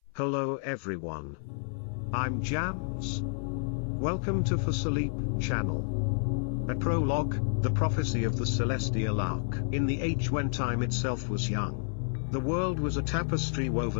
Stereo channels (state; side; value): silent; right; 58 dB below the other